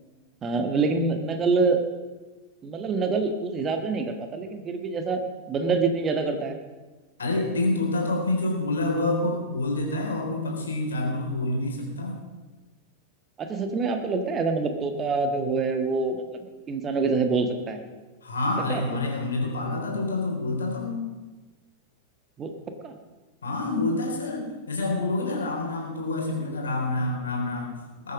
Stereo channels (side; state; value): both; normal; correlation -0.08